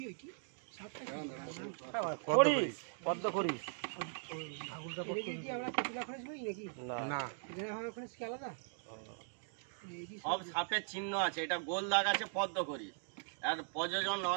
করিস পদ্ম করিস না সব সাপের চিহ্ন আছে, এটা গোল দাগ আছে পদ্ম করি। আর প্রযোজন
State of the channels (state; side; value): silent; left; digital silence